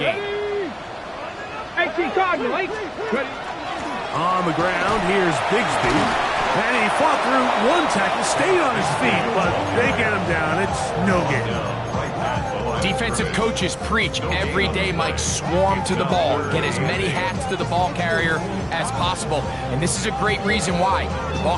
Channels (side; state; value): both; identical; correlation 1.00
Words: On the ground, here's Bigsby. And he fought through one tackle, stayed on his feet, but they get him down. It's no gain. Defensive coaches preach every day, Mike, swarm to the ball. Get as many hats to the ball carrier as possible. And this is a great reason why. The